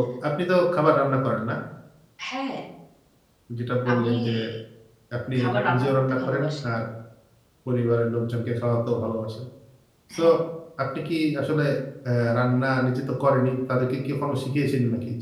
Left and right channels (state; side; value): identical; both; correlation 1.00